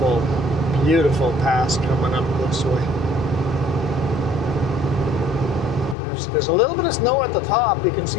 beautiful pass coming up this way. There's a little bit of snow at the top. You can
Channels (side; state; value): right; drops out; at 6.0 s